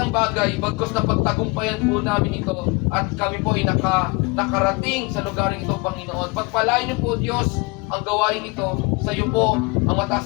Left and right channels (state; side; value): quieter; right; 27.7 dB